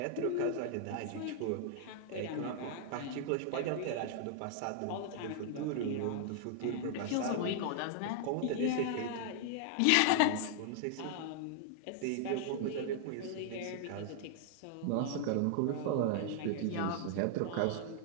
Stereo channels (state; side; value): different; both; correlation -0.01